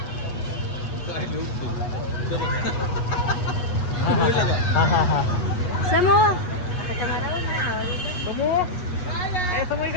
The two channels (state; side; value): late; right; 8.3 ms